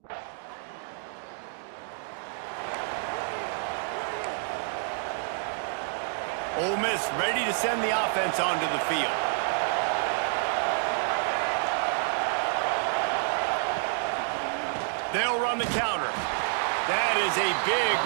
Ole Miss ready to send the offense onto the field. They'll run the counter. That is a big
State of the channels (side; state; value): left; silent; 59 dB below the other